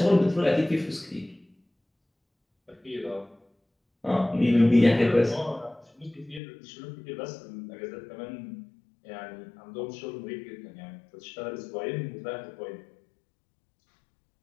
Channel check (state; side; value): drops out; right; at 6.4 s